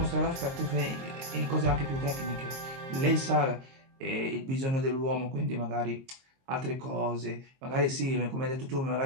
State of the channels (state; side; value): late; left; 22 ms